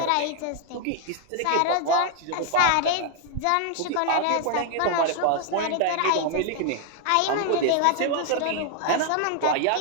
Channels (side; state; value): both; different; correlation 0.00